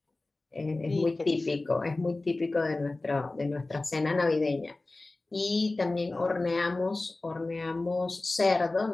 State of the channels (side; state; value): right; quieter; 3.1 dB